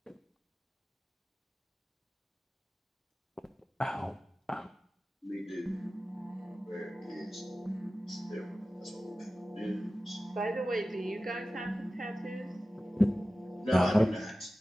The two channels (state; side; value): normal; both; correlation 0.95